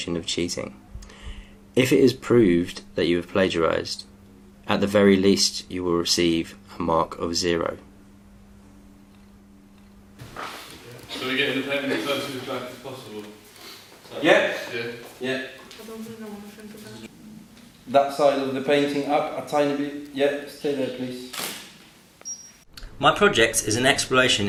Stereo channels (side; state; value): both; identical; correlation 1.00